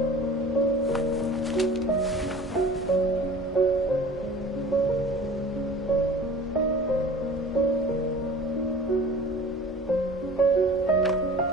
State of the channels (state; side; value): normal; both; correlation 0.43